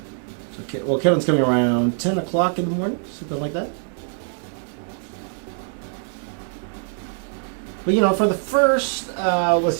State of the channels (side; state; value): left; silent; 63 dB below the other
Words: So, well, Kevin's coming around 10 o'clock in the morning, something like that. But, you know, for the first, let's